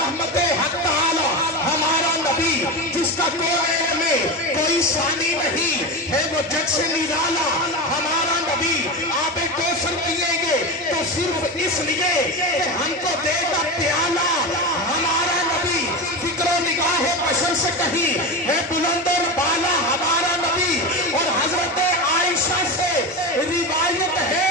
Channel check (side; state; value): both; normal; correlation 0.21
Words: حق تعالی ہمارا نبی، جس کا کوئی میں کوئی ثانی نہیں ہے، وہ جگ سے نرالا ہمارا نبی. آپ کوثر پیئیں گے تو صرف اس لیے کہ ہم کو دے گا پیالہ ہمارا نبی. فکر و نگاہ بشر سے کہیں ہے بلند اور بالا ہمارا نبی. اور حضرت عائشہ سے روایت ہے